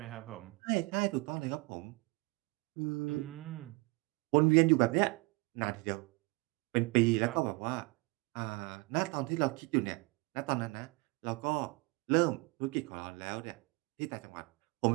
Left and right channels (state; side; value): quieter; left; 25.9 dB